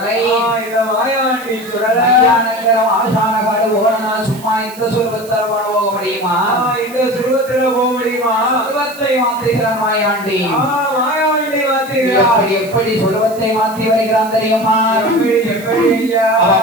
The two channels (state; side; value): noise; right; hiss, 19 dB below the sound